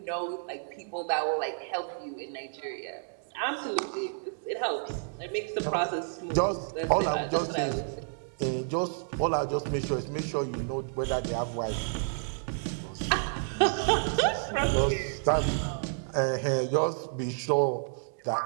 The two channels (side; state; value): left; silent; digital silence